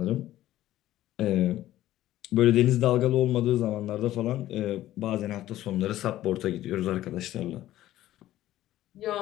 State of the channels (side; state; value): right; quieter; 14.1 dB